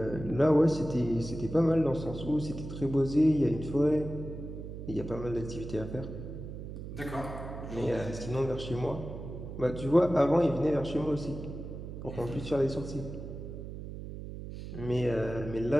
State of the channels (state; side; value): noise; right; hum, 9 dB below the sound